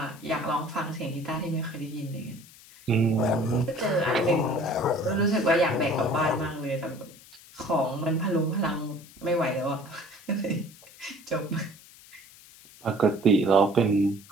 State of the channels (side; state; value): left; noise; hiss, 22 dB below the sound